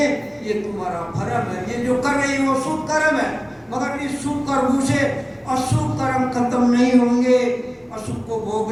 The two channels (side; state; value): both; identical; correlation 1.00